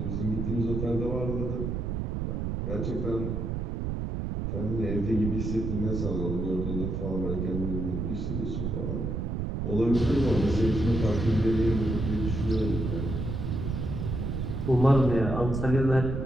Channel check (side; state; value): right; noise; rumble, 2 dB below the sound